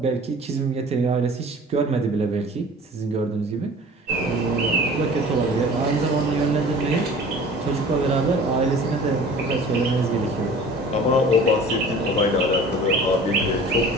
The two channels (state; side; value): normal; both; correlation 0.44